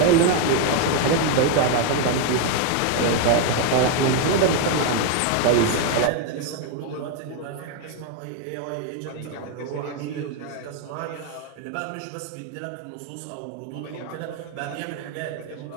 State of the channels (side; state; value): both; different; correlation 0.01